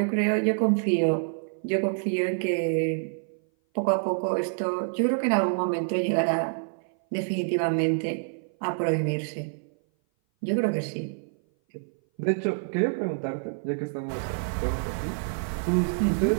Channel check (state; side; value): silent; left; 57 dB below the other